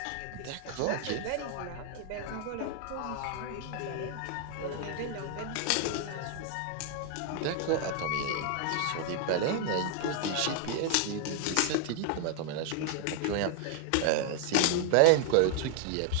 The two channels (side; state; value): both; different; correlation 0.00